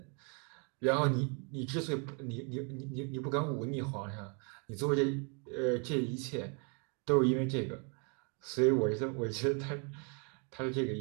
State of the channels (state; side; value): quieter; left; 36.6 dB